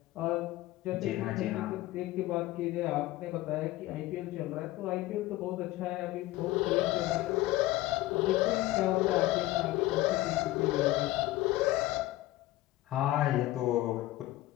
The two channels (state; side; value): quieter; right; 17.0 dB